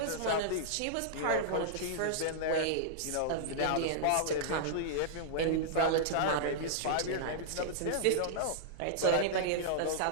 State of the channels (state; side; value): different; both; correlation -0.02